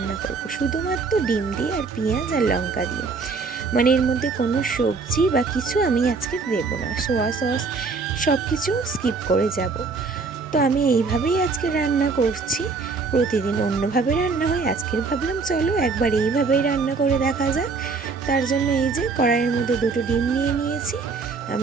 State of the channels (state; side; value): quieter; left; 4.5 dB